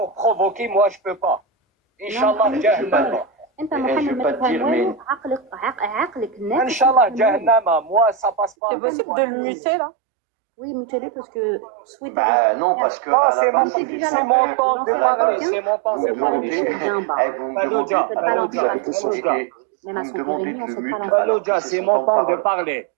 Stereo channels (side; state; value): left; drops out; at 8.6 s